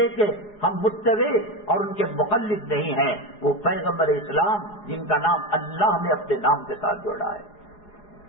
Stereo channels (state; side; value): late; right; 4.8 ms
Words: کہ ہم متبع اور ان کے مقلد نہیں ہیں۔ وہ پیغمبر اسلام جن کا نام اللہ نے اپنے نام کے ساتھ جوڑا ہے۔